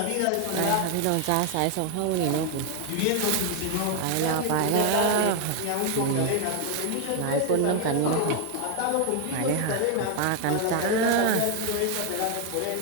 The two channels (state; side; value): different; both; correlation 0.01